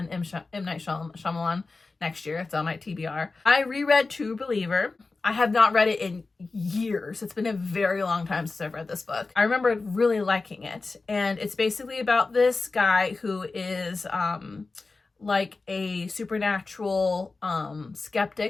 M. Night Shyamalan next year. It's on my TBR. I reread True Believer. I have not read it in years. It's been a very long time since I've read this book. I remember really liking it. And it's basically about this guy who is like a supernatural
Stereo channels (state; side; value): quieter; right; 3.8 dB